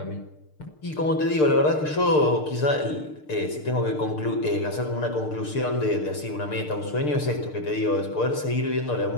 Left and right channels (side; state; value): right; late; 6.6 ms